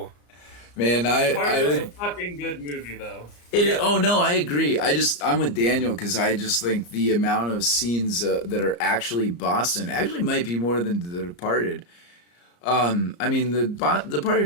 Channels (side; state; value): right; late; 34 ms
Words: Man, I It's a would. fucking good movie, though. Oh no, I agree. I'm with Daniel because I just think the amount of scenes that are actually Boston actually might be more than The Departed. I mean, The Departed